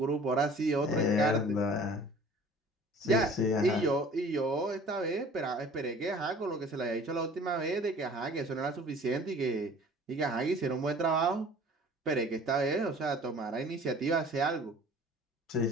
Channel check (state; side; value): normal; both; correlation 0.48